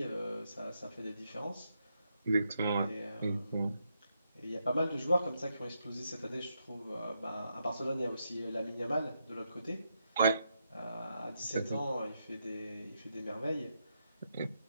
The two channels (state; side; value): inverted; both; correlation -0.81